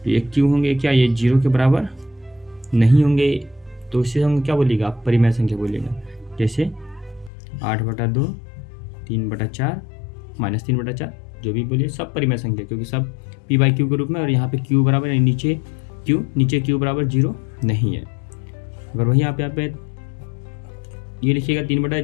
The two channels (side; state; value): right; drops out; at 7.3 s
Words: होंगे क्या, ये 0 के बराबर नहीं होंगे, तो इसे हम क्या बोलेगा, आप परिमेय संख्या बोलेगा। जैसे 8/2, 3/4, -3/4, जो भी बोलिए सब परिमेय संख्या, क्योंकि सब p/q के रूप में, और यहाँ पे q बराबर नीचे q बराबर 0 नहीं है। अगर वही आप यहाँ पे ये लिखिएगा